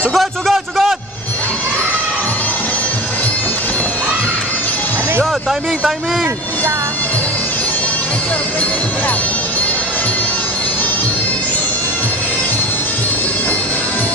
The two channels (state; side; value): normal; both; correlation 0.32